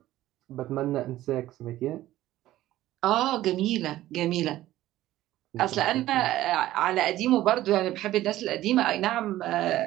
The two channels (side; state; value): left; quieter; 14.8 dB